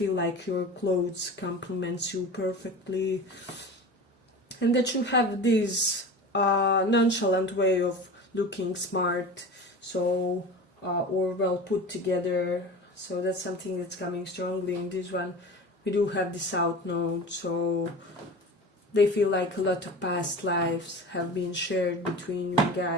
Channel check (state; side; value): normal; both; correlation 0.34